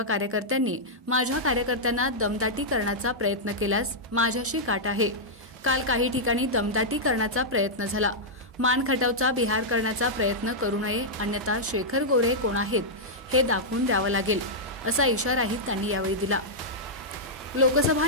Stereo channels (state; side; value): normal; both; correlation -0.08